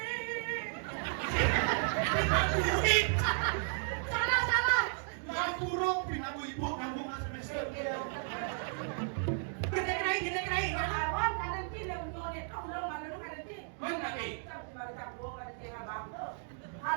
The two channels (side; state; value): left; silent; 55 dB below the other